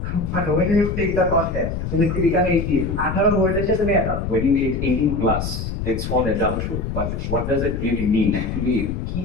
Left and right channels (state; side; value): noise; left; rumble, 4 dB below the sound